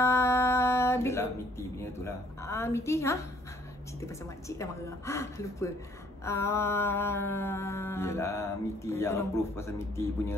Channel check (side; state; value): both; normal; correlation 0.62